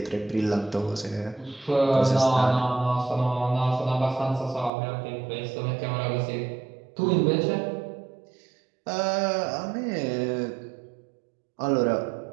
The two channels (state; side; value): drops out; left; at 4.7 s